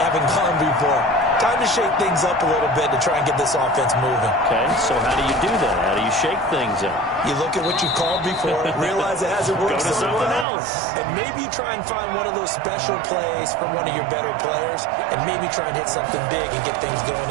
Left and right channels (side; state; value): left; drops out; at 10.5 s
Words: gone before. Time to shake things up a little bit to try and get this offense moving. Okay, so how do you do that? How do you shake things up? You look at what you called before, realize it hasn't worked Go to so something well, else. and maybe you try and find one of those special plays from one of your better players, and maybe try and hit something big and get things going